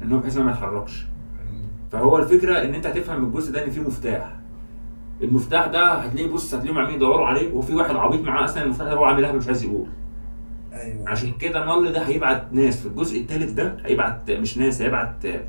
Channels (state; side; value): inverted; both; correlation -1.00